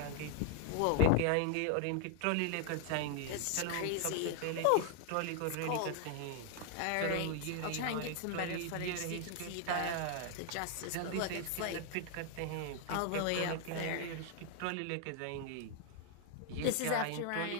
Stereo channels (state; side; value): different; both; correlation 0.00